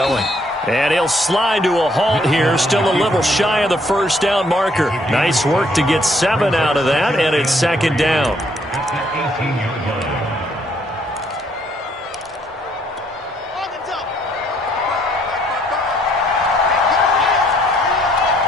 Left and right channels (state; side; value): normal; both; correlation 0.67